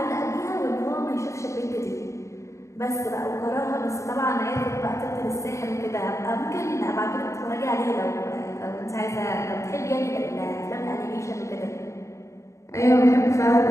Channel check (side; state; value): right; late; 0.14 ms